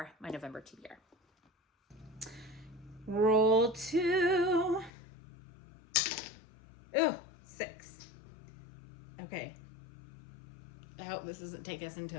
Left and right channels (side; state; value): right; drops out; at 4.9 s